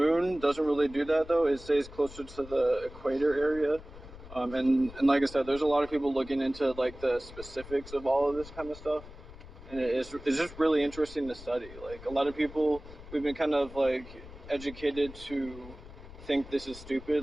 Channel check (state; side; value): noise; left; rumble, 16 dB below the sound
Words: doesn't really do that though. It stays closer to the equator area. And like I said, there's a lot of people looking into like the specifics of all of this kind of stuff. And it's just really interesting to study. Like a lot of people, we've been kind of like educated to think this is